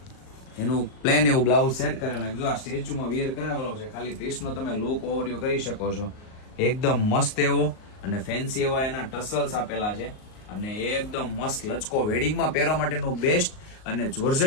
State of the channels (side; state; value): right; late; 38 ms